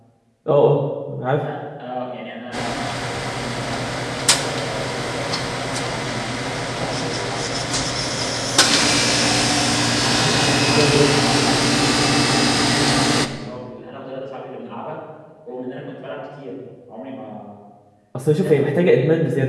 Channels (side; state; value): both; identical; correlation 1.00